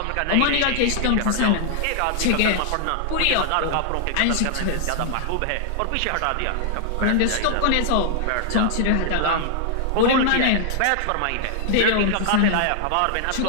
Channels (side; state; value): both; different; correlation 0.00